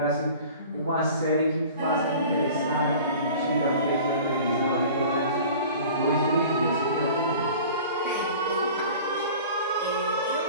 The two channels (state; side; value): inverted; both; correlation -0.43